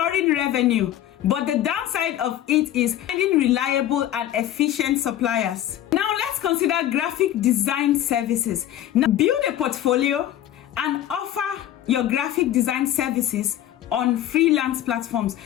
revenue, but the downside of it is finding reliable and efficient suppliers. Now let's consider graphic design services. Now build a portfolio and offer your graphic design services on freelance platforms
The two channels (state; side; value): quieter; right; 12.2 dB